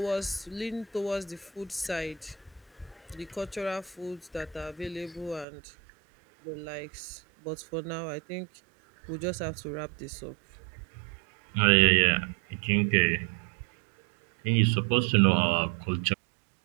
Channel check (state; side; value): drops out; left; at 5.5 s